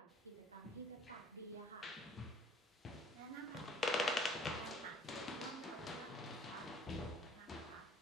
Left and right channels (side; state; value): both; normal; correlation 0.53